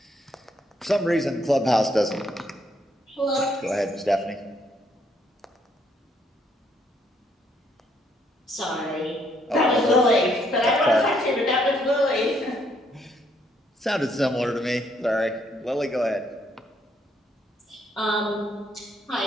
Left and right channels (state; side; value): normal; both; correlation 0.71